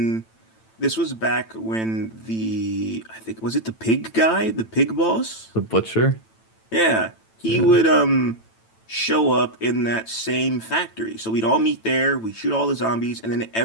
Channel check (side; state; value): right; late; 9.0 ms